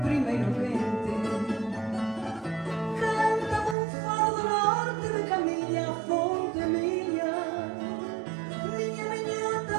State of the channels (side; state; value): left; drops out; at 3.8 s